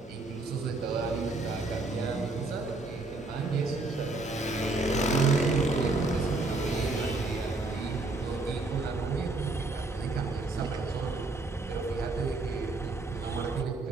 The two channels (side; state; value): left; quieter; 3.1 dB